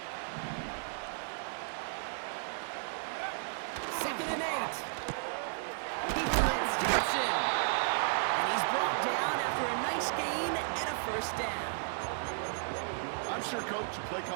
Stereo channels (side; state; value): left; silent; digital silence